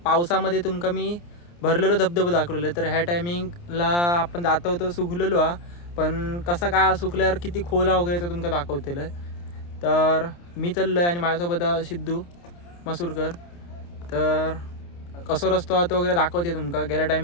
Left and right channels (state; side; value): late; right; 29 ms